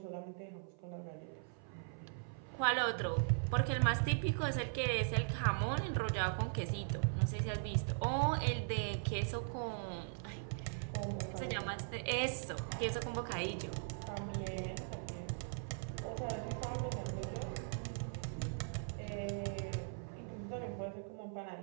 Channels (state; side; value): silent; left; 51 dB below the other